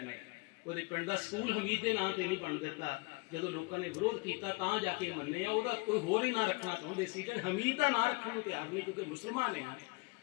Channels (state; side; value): quieter; right; 28.9 dB